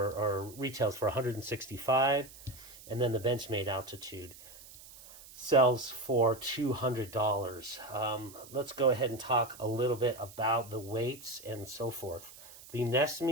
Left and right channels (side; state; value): right; noise; hiss, 19 dB below the sound